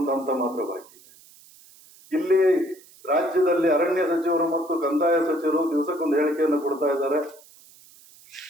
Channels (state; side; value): noise; right; hiss, 25 dB below the sound